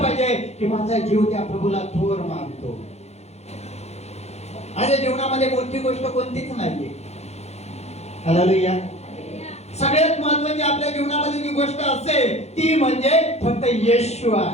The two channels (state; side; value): late; right; 0.31 ms